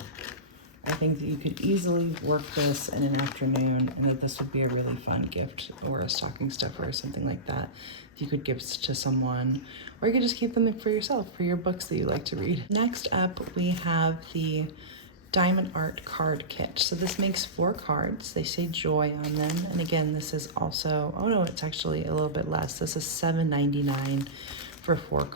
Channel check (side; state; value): both; normal; correlation -0.18